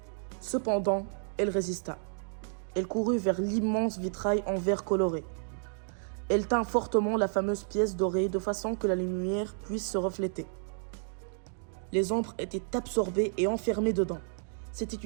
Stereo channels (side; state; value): left; silent; digital silence